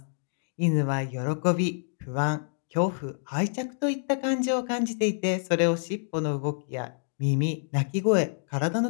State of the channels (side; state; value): right; silent; digital silence